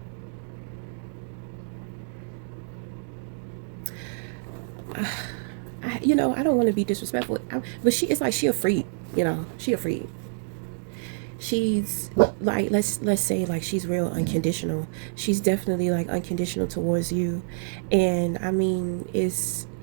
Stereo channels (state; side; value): silent; left; digital silence